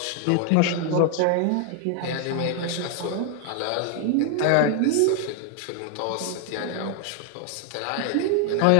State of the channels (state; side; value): different; both; correlation 0.00